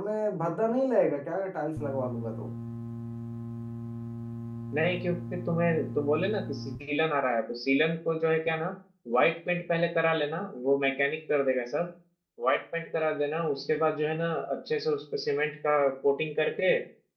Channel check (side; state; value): both; identical; correlation 1.00